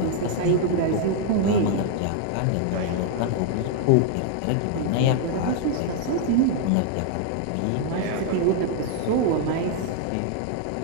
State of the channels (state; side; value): different; both; correlation 0.00